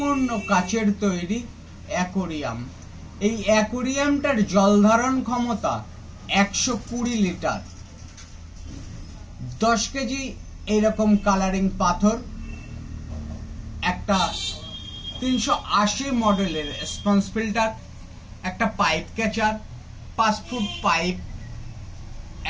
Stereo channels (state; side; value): identical; both; correlation 1.00